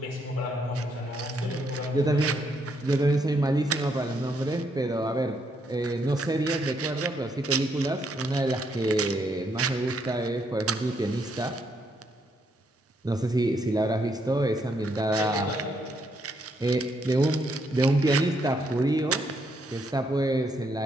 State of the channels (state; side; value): normal; both; correlation 0.75